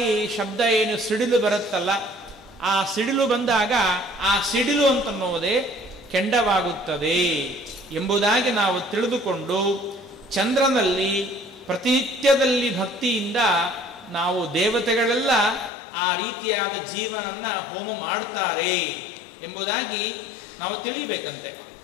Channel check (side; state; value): right; drops out; at 15.7 s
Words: ಶಬ್ದ ಏನು ಸಿಡಿಲು ಬರುತ್ತಲ್ಲ ಆ ಸಿಡಿಲು ಬಂದಾಗ ಆ ಸಿಡಿಲು ಅಂತನ್ನೋದೇ ಕೆಂಡವಾಗುತ್ತದೆ ಎಂಬುದಾಗಿ ನಾವು ತಿಳಿದುಕೊಂಡು ಚಂದ್ರನಲ್ಲಿ ಪ್ರತಿನಿತ್ಯದಲ್ಲಿ ಭಕ್ತಿಯಿಂದ ನಾವು ದೇವತೆಗಳೆಲ್ಲ ಆ ರೀತಿಯಾದ ಜೀವನನ್ನ ಹೋಮ ಮಾಡ್ತಾರೆ ಎಂಬುದಾಗಿ ನಾವು ತಿಳಿಯಬೇಕಂತೆ.